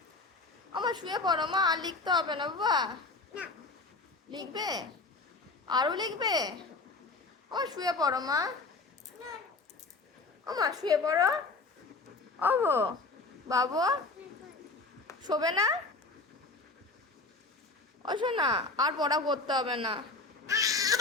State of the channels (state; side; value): quieter; right; 3.6 dB